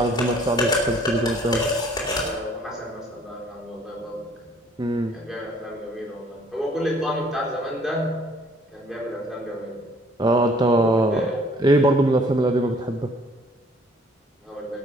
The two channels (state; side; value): normal; both; correlation 0.58